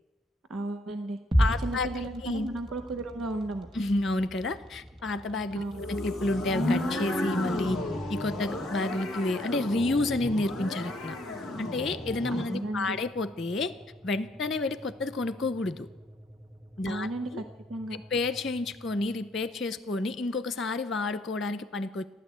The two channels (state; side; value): normal; both; correlation 0.69